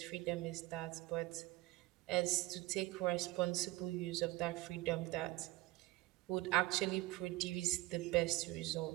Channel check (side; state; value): left; quieter; 19.5 dB